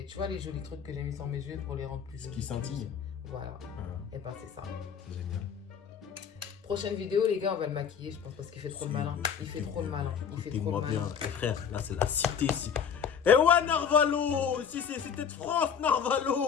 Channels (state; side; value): quieter; right; 7.3 dB